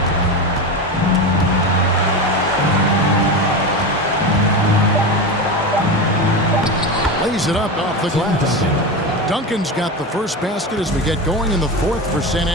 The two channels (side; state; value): both; normal; correlation 0.21